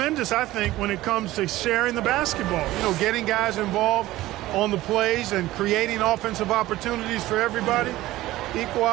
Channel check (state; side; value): quieter; left; 16.7 dB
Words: I think, when it comes to sharing the basketball. You know, getting guys involved on the plays and creating offensive opportunities for everybody. Equal